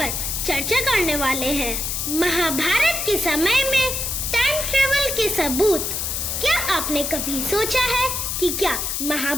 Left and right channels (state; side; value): noise; left; hiss, 2 dB below the sound